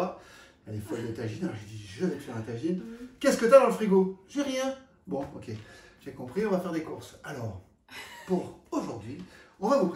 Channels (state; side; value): identical; both; correlation 1.00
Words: Elle est folle de tagine. Alors, j'ai dit, je vais te faire un tagine. Qu'est-ce que tu as dans le frigo? J'ai rien. Bon, ok. J'ai compris, on va faire des courses. Alors, pour aujourd'hui, on va vous